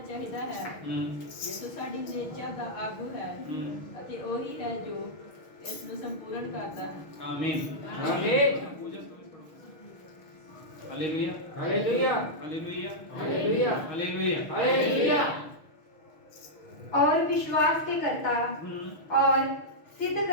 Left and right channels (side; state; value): right; late; 6.4 ms